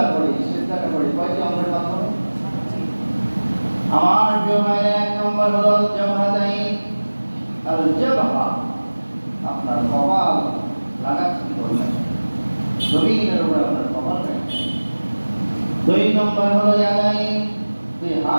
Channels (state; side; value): inverted; both; correlation -1.00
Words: করি, সিজদাটা করি কয়টি অঙ্গের মাধ্যমে? আমার প্রিয় ভাইরা, এক নম্বর হলো জাবহাতাইন। আল জাবহা, আপনার কপাল লাগাচ্ছেন বললেন, জমিনের উপরে আপনার কপাল রাখছেন। দুই নম্বর হলো ইয়াদাইন, দুই